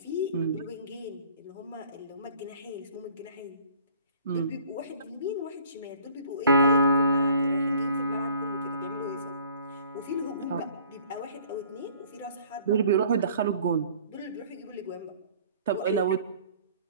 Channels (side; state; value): both; inverted; correlation -0.53